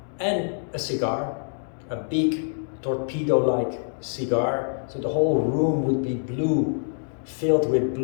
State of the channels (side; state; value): right; silent; digital silence